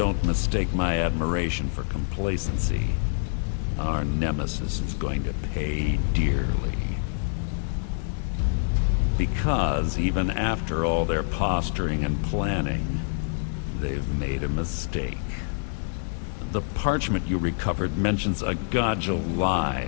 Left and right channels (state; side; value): silent; right; digital silence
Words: mistake my admiration for complacency. Our nemesis is going to pay dearly. Because even after all their posturing and planning, they've made a mistake. The parchment you recovered mentions a Godjal lie.